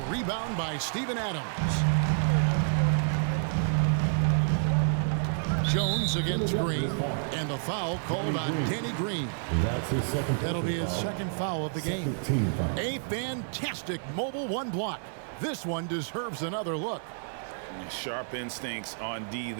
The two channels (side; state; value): left; silent; 58 dB below the other